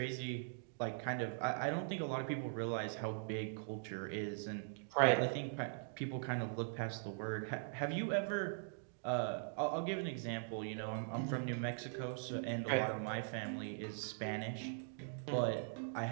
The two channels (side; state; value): left; silent; digital silence